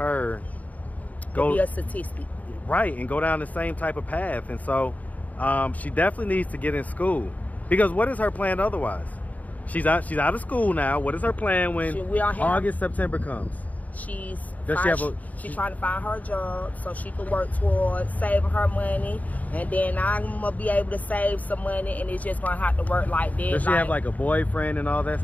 go be a statistic, right, and go down the same type of path. And so she definitely needs to get in school, because what is her plan otherwise? She's out of school now. What is her plan when August, September comes? She's trying to find her job so she can work towards saving her money, and then I'm gonna be able to save some money, and it's just gonna have to work like this. Does she have like a boyfriend and all that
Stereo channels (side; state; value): right; late; 0.074 ms